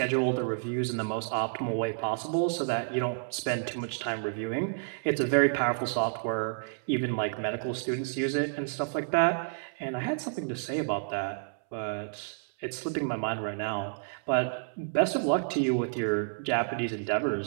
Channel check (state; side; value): silent; left; 58 dB below the other